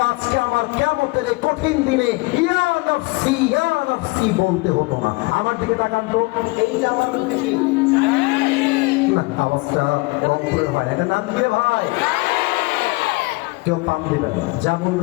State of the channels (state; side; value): quieter; right; 25.0 dB